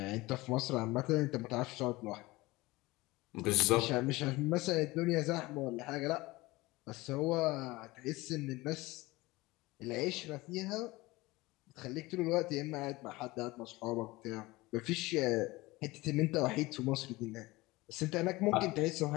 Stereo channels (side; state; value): right; quieter; 20.8 dB